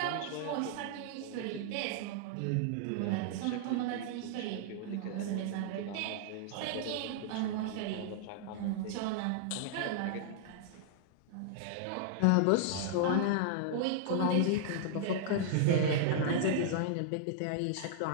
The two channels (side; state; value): both; different; correlation -0.01